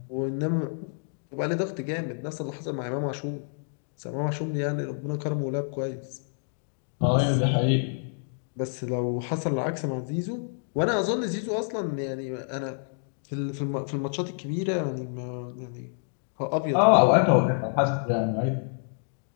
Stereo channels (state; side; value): silent; right; digital silence